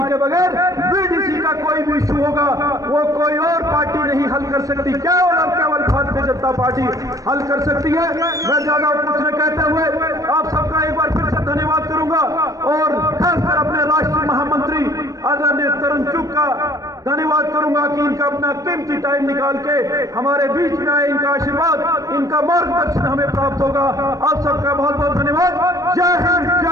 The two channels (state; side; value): late; left; 0.16 ms